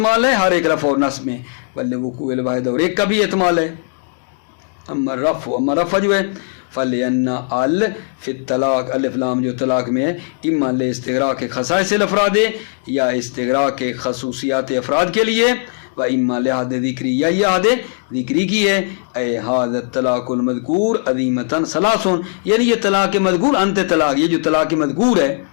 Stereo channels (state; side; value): silent; right; 61 dB below the other